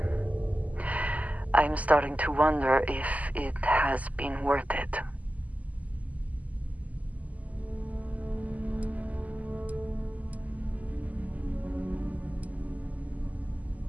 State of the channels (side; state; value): left; late; 0.074 ms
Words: I'm starting to wonder if it has been worth it.